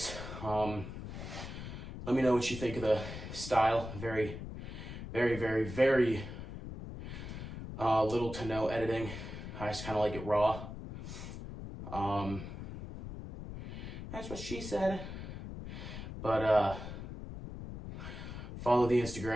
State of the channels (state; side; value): noise; left; rumble, 9 dB below the sound